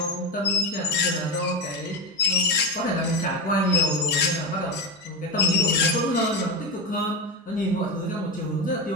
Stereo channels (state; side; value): normal; both; correlation 0.19